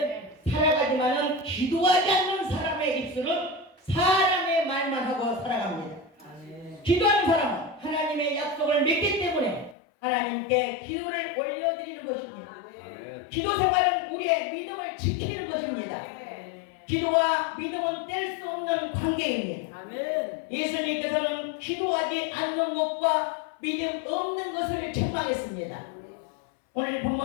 살아가지만은 기도하지 않는 사람의 입술은 사람의 말만 하고 살아갑니다. 아멘. 기도하는 사람은 하나님의 약속을 믿기 때문에 하나님께 기도를 올려드리는 것입니다. 아멘. 기도 생활은 우리의 믿음을 지키는 것입니다. 기도와 믿음은 뗄 수 없는 관계입니다. 아멘. 예수님께서는 기도하지 않는 것과 믿음 없는 것을 책망했습니다. 오늘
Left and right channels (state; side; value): drops out; right; at 9.8 s